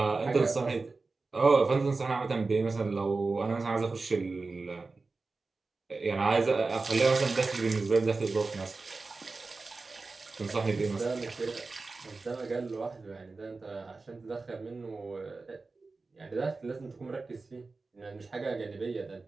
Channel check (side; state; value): left; quieter; 3.8 dB